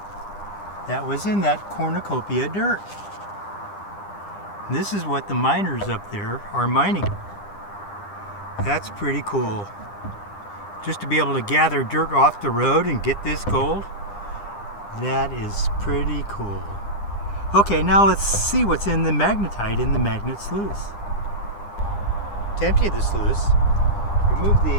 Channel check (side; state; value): right; late; 9.9 ms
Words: that was in that cornucopia dirt. And this is what the miners up there are mining. That's pretty cool. Just to be able to gather dirt off the road and get this gold, that is pretty cool. Okay, now let's see what's in the magnetite in the magnet sluice. To empty the sluice, remove